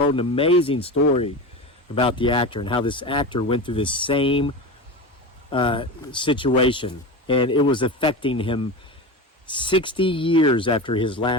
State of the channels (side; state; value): both; normal; correlation 0.25